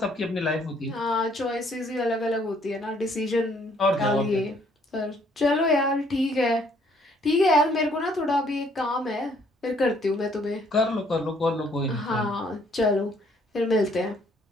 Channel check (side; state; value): both; normal; correlation 0.65